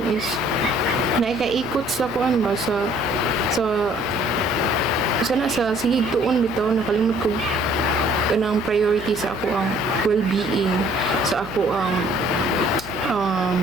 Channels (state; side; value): noise; left; hum, 17 dB below the sound